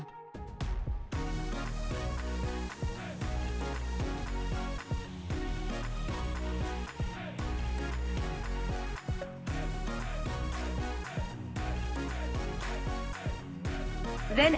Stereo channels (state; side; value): identical; both; correlation 1.00